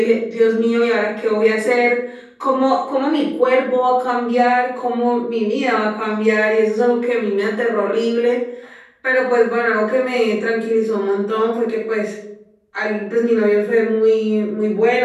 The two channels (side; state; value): both; identical; correlation 1.00